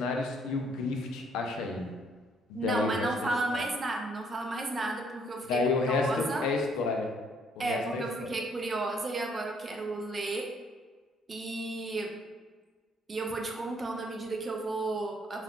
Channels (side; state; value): both; normal; correlation 0.66